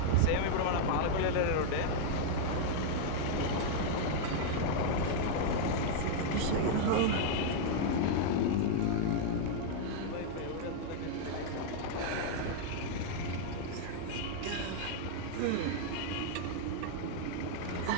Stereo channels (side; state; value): both; different; correlation -0.01